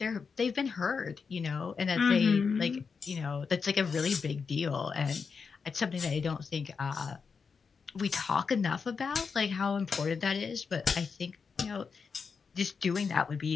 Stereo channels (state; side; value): quieter; right; 5.5 dB